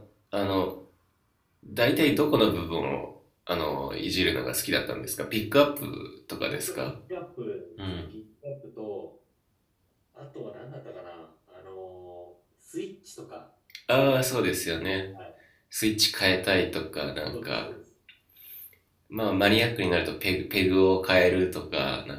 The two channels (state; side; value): identical; both; correlation 1.00